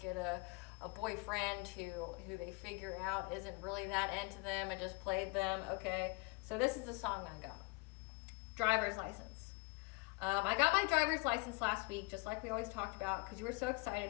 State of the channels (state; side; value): quieter; right; 26.6 dB